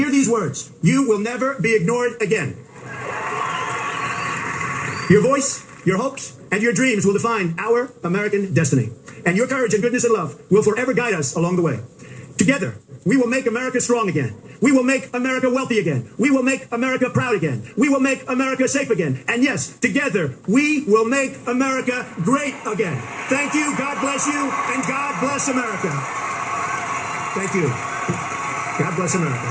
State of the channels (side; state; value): both; identical; correlation 1.00